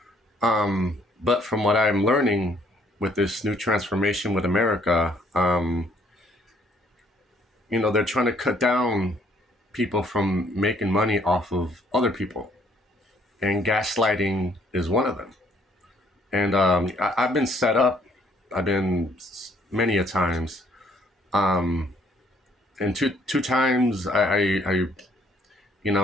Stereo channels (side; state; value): both; normal; correlation 0.64